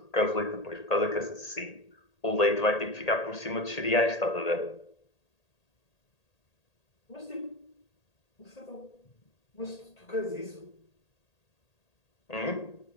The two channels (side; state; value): right; late; 1.8 ms